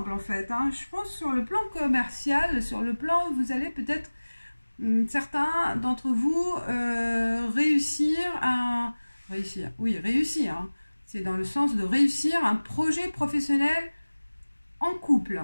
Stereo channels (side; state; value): both; inverted; correlation -1.00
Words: en fait, hein. Je pense sur le plan commercial, sur le plan, vous allez peut-être, certains d'entre vous, réussir, hein. C'est dans le sens de réussir un projet professionnel en couple.